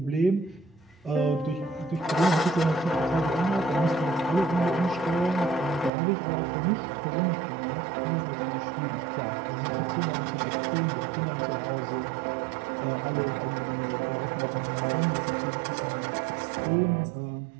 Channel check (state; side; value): drops out; left; at 5.9 s